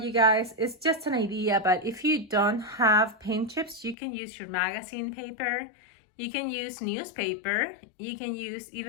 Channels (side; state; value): right; drops out; at 4.0 s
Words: guys, it's just an idea, but if you don't have paint chips, you can use your magazine paper, you can use newspaper, you can use